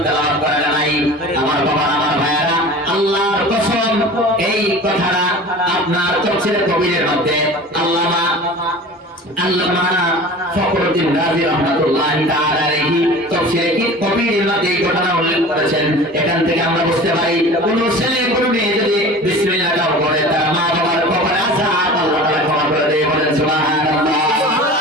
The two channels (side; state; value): both; normal; correlation 0.39